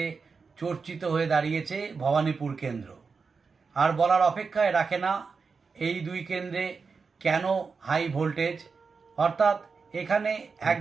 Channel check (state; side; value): quieter; left; 5.0 dB